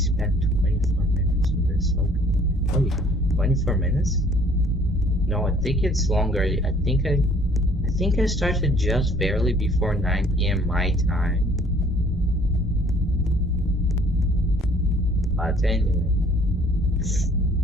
24 minutes on this. Okay. 24 minutes? No, I think it's longer. I think I started just barely before 9 PM my time. But anyway.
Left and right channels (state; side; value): normal; both; correlation 0.57